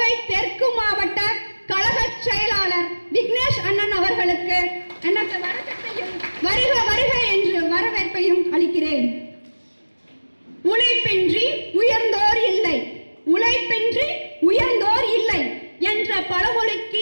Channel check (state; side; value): inverted; both; correlation -1.00